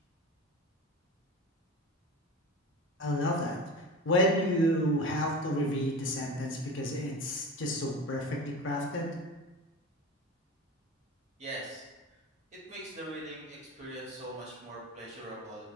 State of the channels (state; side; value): normal; both; correlation 0.31